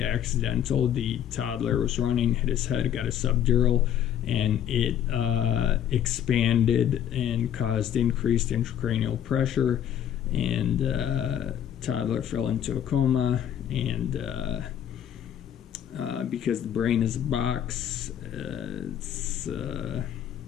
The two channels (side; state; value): right; quieter; 10.0 dB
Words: accidental. The toddler was running, hit his head, got a subdural, and it expanded and caused increased intracranial pressure, and toddler fell into a coma. And because the brain is a box,